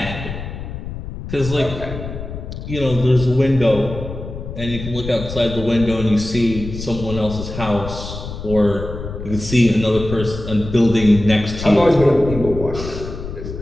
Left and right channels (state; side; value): noise; left; rumble, 9 dB below the sound